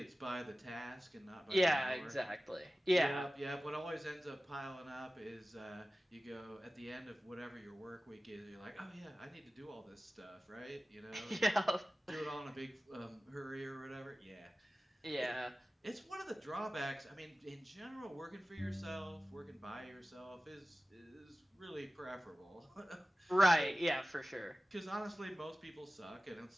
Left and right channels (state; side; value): normal; both; correlation 0.96